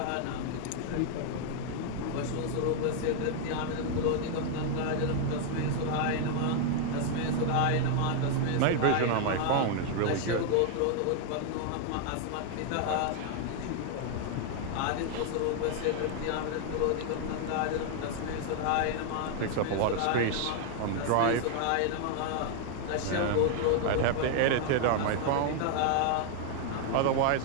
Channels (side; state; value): both; different; correlation 0.00